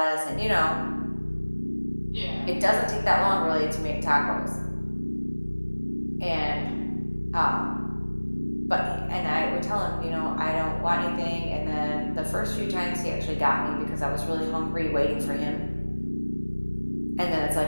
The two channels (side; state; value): both; inverted; correlation -1.00